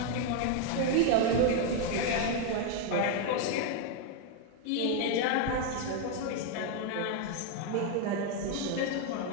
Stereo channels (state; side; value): different; both; correlation 0.01